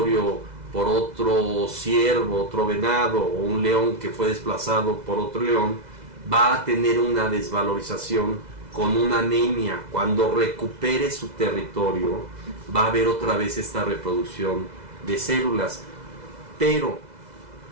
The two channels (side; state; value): left; late; 2.0 ms